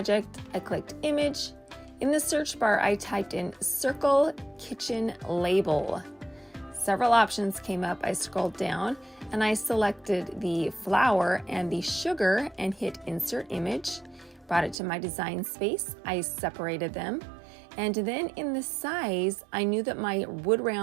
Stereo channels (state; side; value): drops out; left; at 14.8 s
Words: I clicked Image. In the search bar, I typed in Circle Kitchen Label. Several options came up. I scrolled down and I selected the flour and the sugar and hit Insert Image. Brought it to my design space. I separated them. And then in the size, I knew that my wood